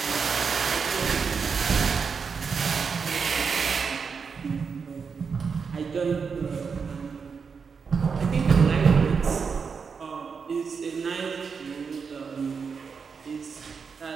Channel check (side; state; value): left; quieter; 5.7 dB